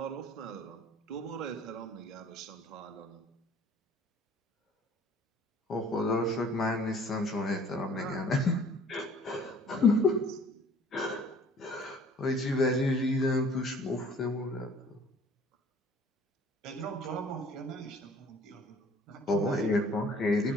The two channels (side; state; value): both; normal; correlation 0.53